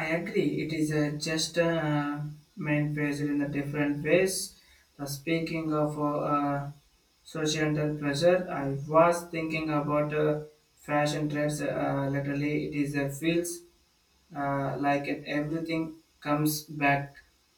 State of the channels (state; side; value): identical; both; correlation 1.00